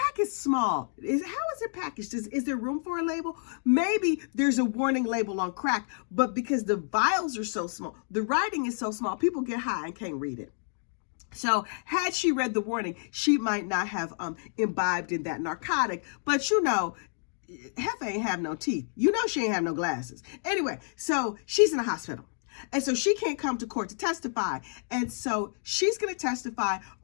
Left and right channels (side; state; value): right; silent; digital silence